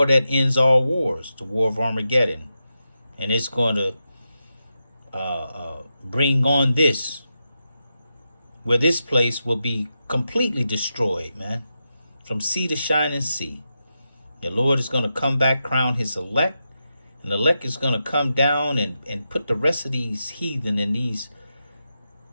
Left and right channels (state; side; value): inverted; both; correlation -0.88